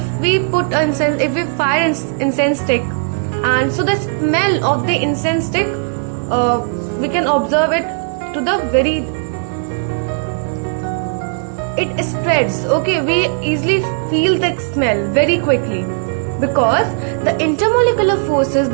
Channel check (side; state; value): left; silent; 65 dB below the other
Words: we put incense, if we fire incense stick, and so the smell of the incense stick, we can observe it to the very, it spreads. Okay, we easily feel the smell very quickly because the intermolecular forces